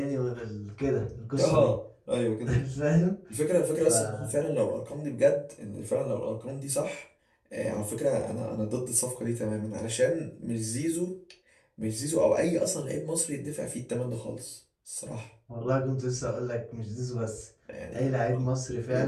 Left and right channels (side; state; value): both; identical; correlation 1.00